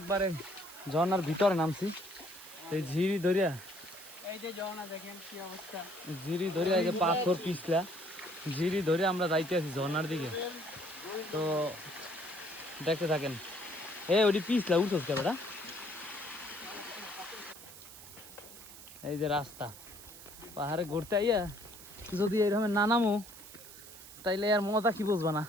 ঝর্ণার ভিতরে নামছি। এই ঝিরি ধরিয়া এই যে ঝর্ণা দেখেন কি অবস্থা, ঝিরি ধরিয়া এই যে পাথর পিছলা ঝিরি ধরে আমরা যাইতে আছি ঝর্ণার দিকে। তো দেখতে থাকেন। ওটি পিছলা উঠোস কে বেটা। এই যে রাস্তা পাহাড়ে ঘুরতে আইয়া যদি এইরকম না নামো তাইলে আর মজা কি বুঝবা না।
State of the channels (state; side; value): noise; right; hiss, 16 dB below the sound